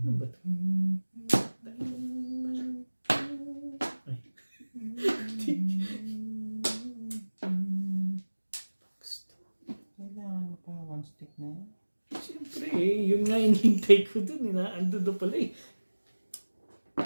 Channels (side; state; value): both; inverted; correlation -1.00